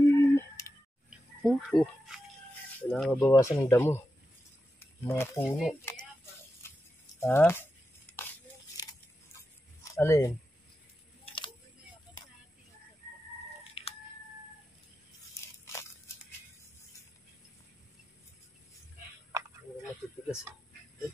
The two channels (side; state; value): both; normal; correlation 0.90